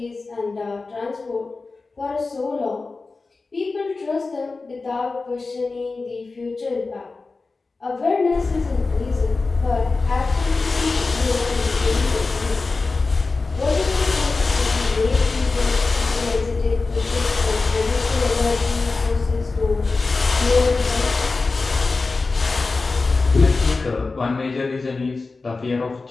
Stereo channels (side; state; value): right; quieter; 3.9 dB